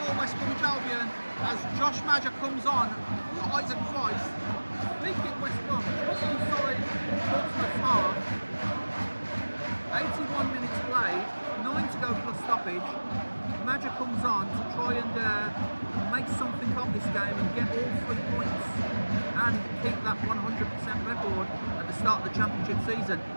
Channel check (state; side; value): inverted; both; correlation -1.00